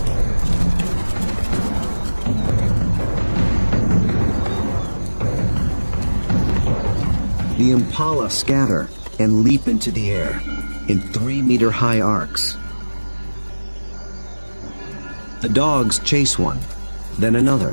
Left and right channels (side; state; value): both; inverted; correlation -1.00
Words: The Impala scatter and leap into the air in 3-meter-high arcs. The dogs chase one, then